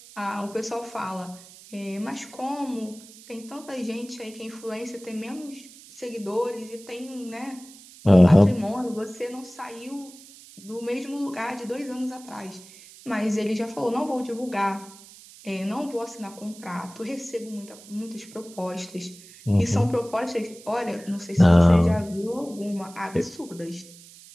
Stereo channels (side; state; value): right; noise; hiss, 20 dB below the sound